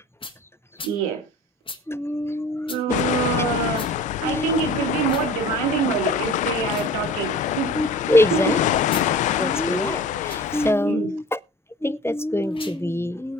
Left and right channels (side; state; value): both; normal; correlation 0.43